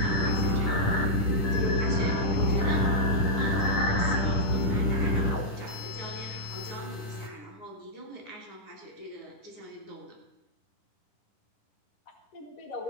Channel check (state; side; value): late; right; 10 ms